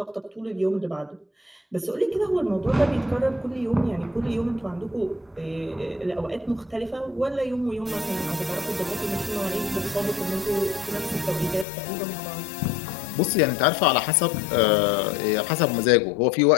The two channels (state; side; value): drops out; right; at 11.7 s